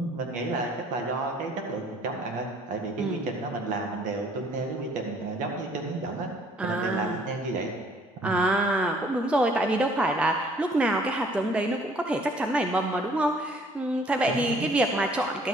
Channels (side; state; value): both; normal; correlation 0.59